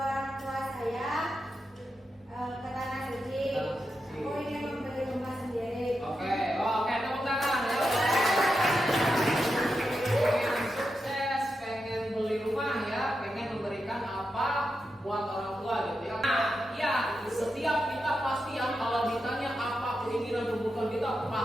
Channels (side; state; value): both; normal; correlation 0.87